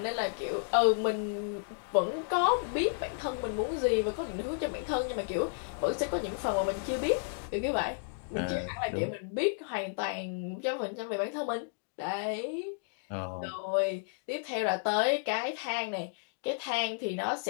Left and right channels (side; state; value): right; silent; digital silence